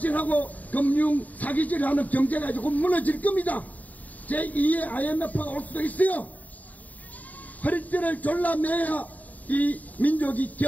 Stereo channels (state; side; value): late; right; 0.075 ms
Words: 금융 사기질하는 경제가 이제 곧 무너질 겁니다. 제2의 IMF가 올 수도 있어요. 허리띠를 졸라 매야 이 민족이